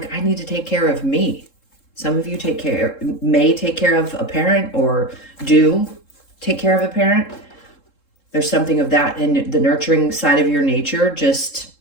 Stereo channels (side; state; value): right; late; 3.7 ms